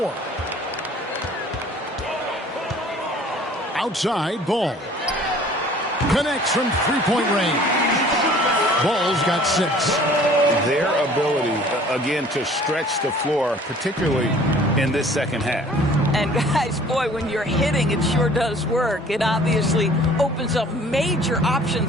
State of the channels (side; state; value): both; normal; correlation 0.51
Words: Outside, Ball. Connects from three-point range. Ball's got 6. Their ability, again, to stretch the floor, particularly in this second half. And guys, boy, when you're hitting, it sure does work. It obviously opens up major